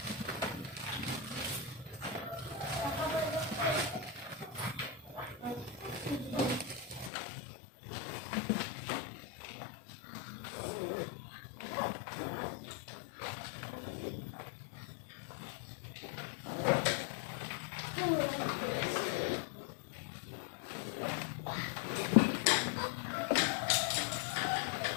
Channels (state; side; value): drops out; right; at 7.1 s